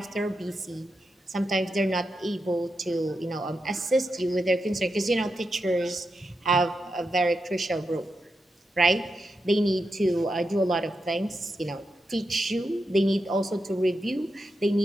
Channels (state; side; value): normal; both; correlation 0.87